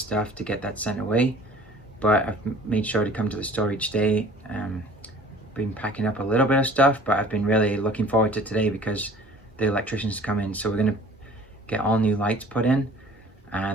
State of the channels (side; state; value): both; normal; correlation 0.49